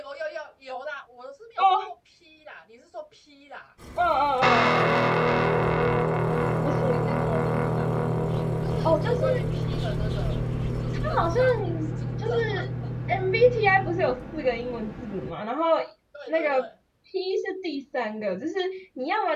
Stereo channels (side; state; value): both; identical; correlation 1.00